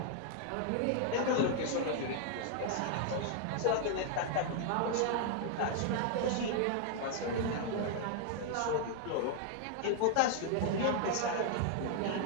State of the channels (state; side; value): different; both; correlation 0.00